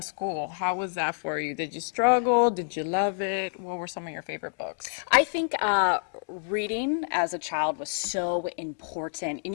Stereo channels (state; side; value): silent; right; digital silence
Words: How was that for you? Did you struggle? Did you love it? What were some of your favorite books? I think reading as a child was so important.